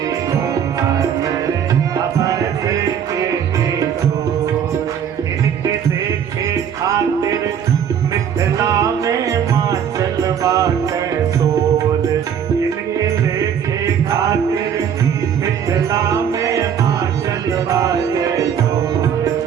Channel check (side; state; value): left; quieter; 8.3 dB